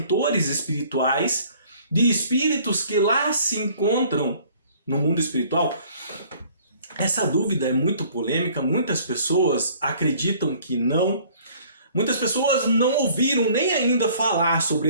espirituais de espíritos que lá se encontram no mundo espiritual? Essa dúvida é muito polêmica, muitas pessoas acreditam que não. Muitas pessoas não ouviram nem ainda falar sobre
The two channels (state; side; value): inverted; both; correlation -0.55